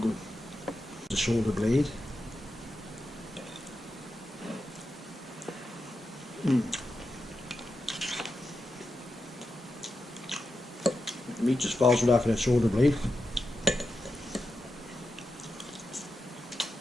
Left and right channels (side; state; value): both; normal; correlation 0.89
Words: The shoulder blade. The meat just falls right off of that shoulder blade.